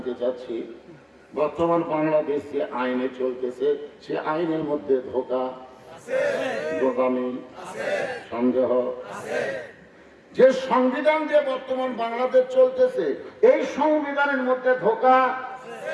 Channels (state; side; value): identical; both; correlation 1.00